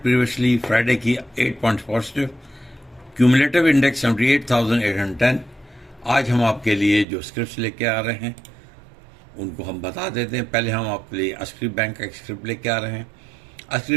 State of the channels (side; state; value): left; drops out; at 7.1 s